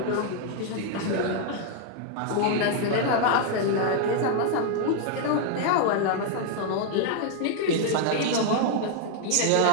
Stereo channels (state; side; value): different; both; correlation 0.00